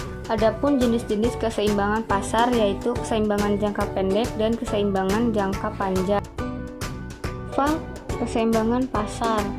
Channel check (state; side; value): identical; both; correlation 1.00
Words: Adapun jenis-jenis keseimbangan pasar yaitu keseimbangan jangka pendek dan keseimbangan jangka panjang. Keseimbangan pasar.